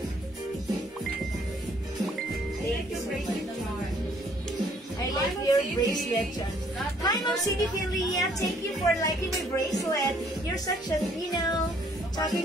Thank you so much. I like your bracelet, John. Hi, Ma'am Cindy Philia. Thank you for liking my bracelet. You're such a, talking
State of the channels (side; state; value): both; normal; correlation 0.63